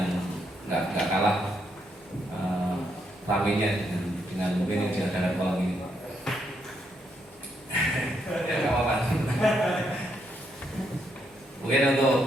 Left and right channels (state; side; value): normal; both; correlation 0.77